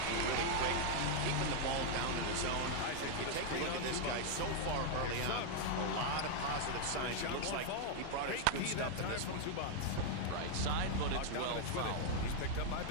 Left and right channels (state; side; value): different; both; correlation 0.00